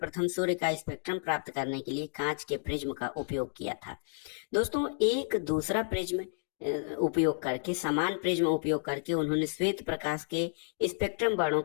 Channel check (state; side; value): silent; right; digital silence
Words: सूर्य का स्पेक्ट्रम प्राप्त करने के लिए कांच के प्रिज्म का उपयोग किया था। दोस्तों, एक दूसरा प्रिज्म उपयोग करके, समान प्रिज्म उपयोग करके उन्होंने श्वेत प्रकाश के स्पेक्ट्रम वर्णों